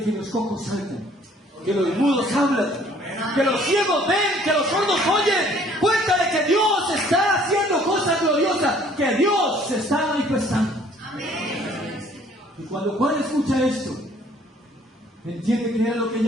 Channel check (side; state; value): both; normal; correlation 0.58